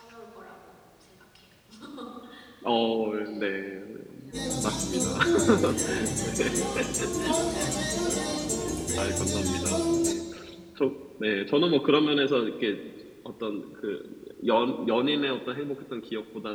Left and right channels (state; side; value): identical; both; correlation 1.00